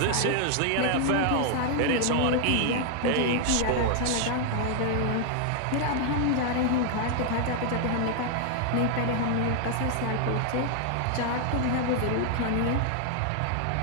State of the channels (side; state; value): both; different; correlation 0.00